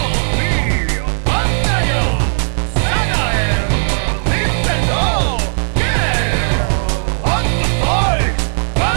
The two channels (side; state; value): left; silent; 66 dB below the other